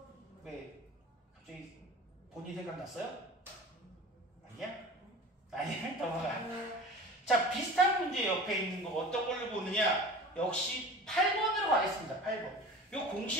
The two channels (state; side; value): normal; both; correlation 0.37